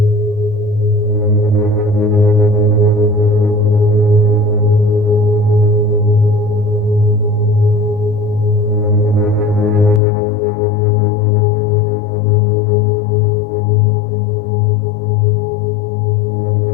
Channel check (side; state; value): right; drops out; at 10.0 s